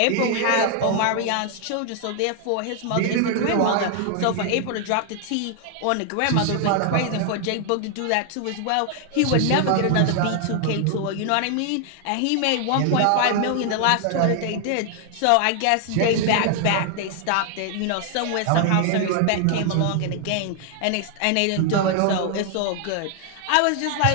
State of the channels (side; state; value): both; different; correlation 0.00